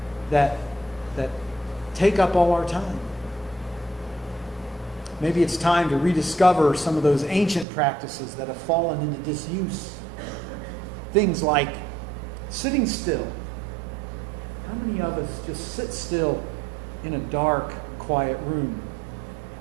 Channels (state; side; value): drops out; left; at 7.7 s